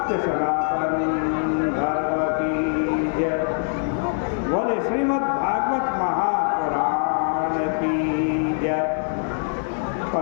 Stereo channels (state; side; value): silent; right; 63 dB below the other